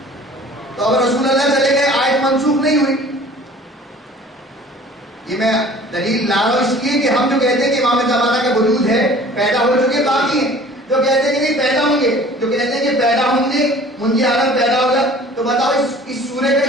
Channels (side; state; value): both; normal; correlation 0.48